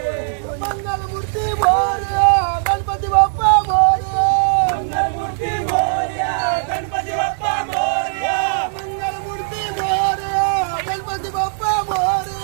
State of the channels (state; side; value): silent; left; digital silence